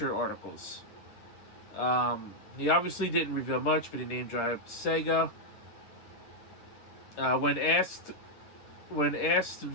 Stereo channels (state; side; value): late; right; 9.9 ms